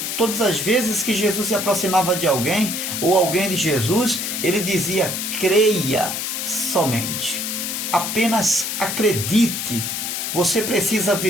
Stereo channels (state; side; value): noise; left; hiss, 3 dB below the sound